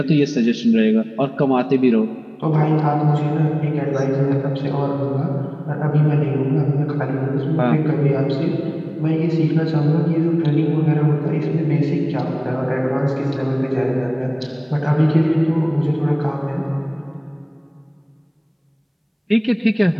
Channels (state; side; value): identical; both; correlation 1.00